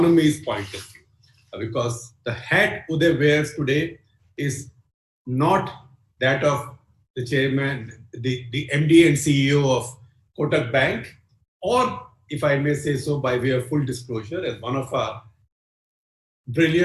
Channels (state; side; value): identical; both; correlation 1.00